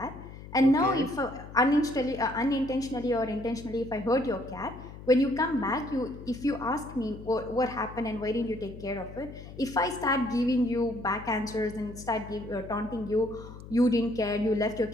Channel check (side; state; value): left; noise; hum, 14 dB below the sound